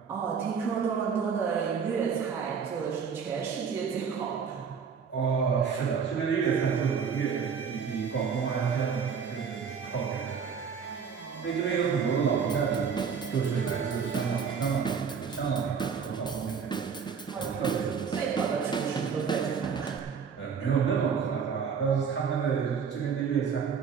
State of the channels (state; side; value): quieter; left; 6.4 dB